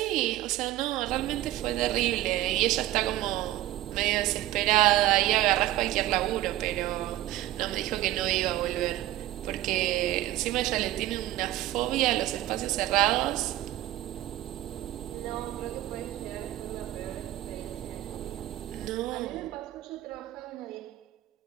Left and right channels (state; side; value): quieter; left; 15.0 dB